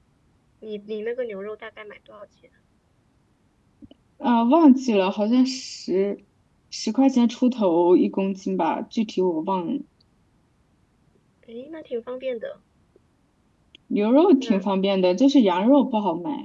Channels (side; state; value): both; identical; correlation 1.00